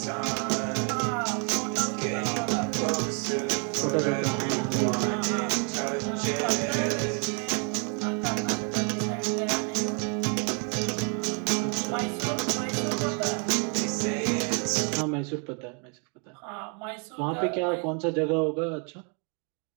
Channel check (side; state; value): left; quieter; 38.9 dB